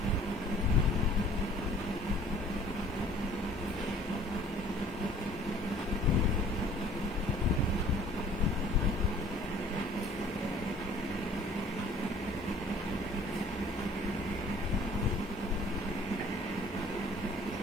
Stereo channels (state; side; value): normal; both; correlation 0.52